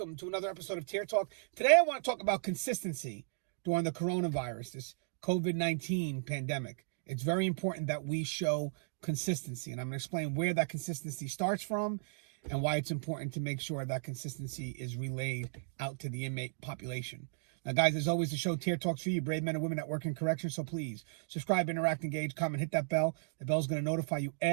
to another episode of Tier Talk. Today I want to talk about consistency during the coronavirus, this COVID-19 pandemic. It's very important that we show consistency, and I'm going to explain where that consistency starts from and why it's important to make sure that consistency is relayed out to the inmate population. Now, guys, as always, the show Tier Talks for you, brave men and women that work in corrections. So please subscribe, interact, engage, comment, hit that bell. The bell's going to notify you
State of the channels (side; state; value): left; silent; digital silence